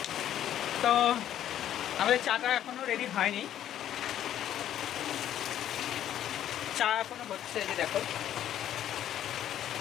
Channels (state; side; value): quieter; right; 11.2 dB